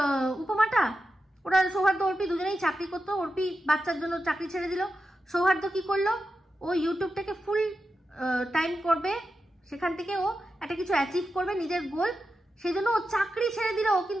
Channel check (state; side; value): normal; both; correlation 0.90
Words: উপমাটা? ওরা সৌহার্দ্য অর্পি দুজনেই চাকরি করতো। অর্পি বাচ্চার জন্য চাকরি ছেড়ে দিল। সৌহার্দ্য কি করলো? ও ইউটিউবটাকে ফুল টাইম করবে, সেখান থেকে ও একটা কিছু অ্যাচিভ করবে, নিজের গোল, সেই জন্য ও চাকরি ছেড়ে দিল।